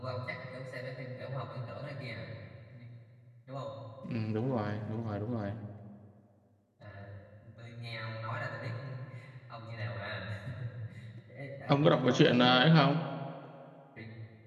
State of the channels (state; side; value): identical; both; correlation 1.00